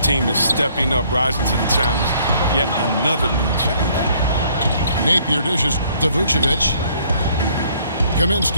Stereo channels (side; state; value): both; inverted; correlation -0.62